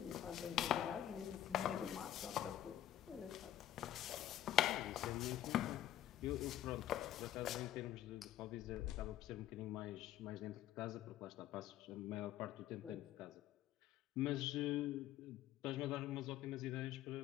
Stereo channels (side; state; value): right; quieter; 12.4 dB